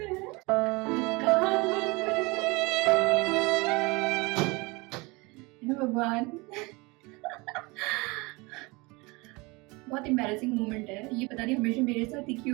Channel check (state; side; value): quieter; left; 25.4 dB